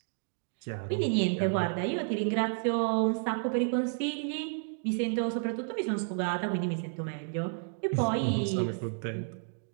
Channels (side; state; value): left; silent; 57 dB below the other